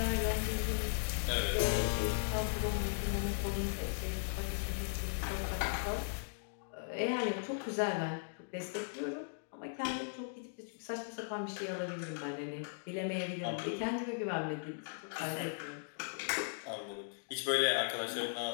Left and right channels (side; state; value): right; silent; digital silence